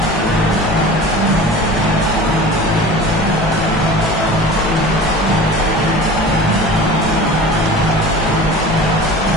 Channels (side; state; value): both; normal; correlation 0.38